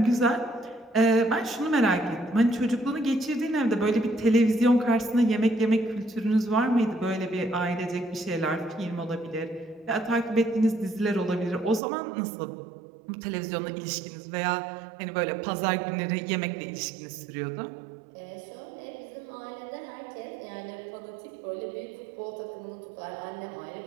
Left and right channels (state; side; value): drops out; left; at 11.8 s